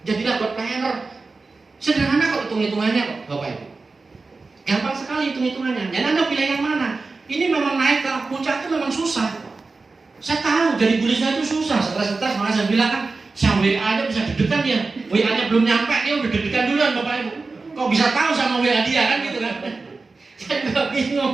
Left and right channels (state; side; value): quieter; left; 3.9 dB